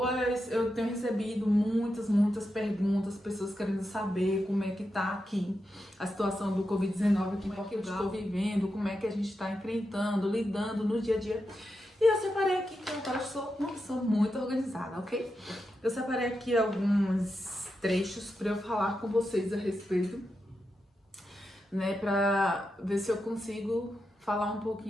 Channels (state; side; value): normal; both; correlation 0.87